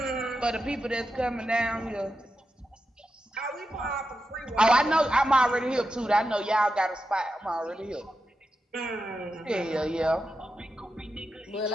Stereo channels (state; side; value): normal; both; correlation 0.89